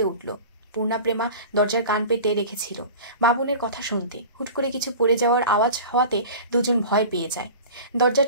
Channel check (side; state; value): both; inverted; correlation -0.36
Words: উঠল। পূর্ণা প্রেমা দরজার কান পেতে রেখেছিল বাবুনের কথা শুনতে। হুট করে কিছু পড়ে যাওয়ার আওয়াজ হওয়াতে দুজন ভয় পেয়ে যায়। দরজা